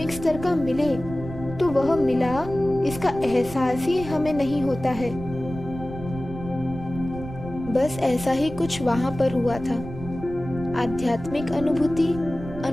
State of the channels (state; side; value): noise; right; rumble, 12 dB below the sound